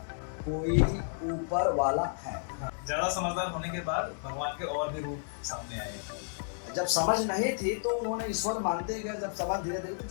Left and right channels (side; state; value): right; silent; digital silence